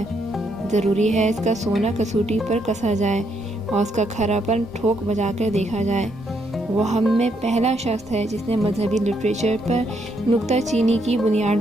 ضروری ہے اس کا سونا کسوٹی پر کسا جائے، اور اس کا کھراپن ٹھوک بجا کر دیکھا جائے۔ وہ ہم میں پہلا شخص ہے جس نے مذہبی لٹریچر پر نکتہ چینی کی بنیاد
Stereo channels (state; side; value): normal; both; correlation 0.75